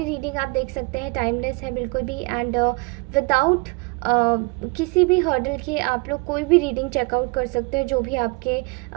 रीडिंग आप देख सकते हैं, टाइमलेस है बिल्कुल भी। एंड विदाउट किसी भी हर्डल के आप लोग कोई भी रीडिंग चेकआउट कर सकते हैं, जो भी आपके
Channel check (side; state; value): left; quieter; 29.7 dB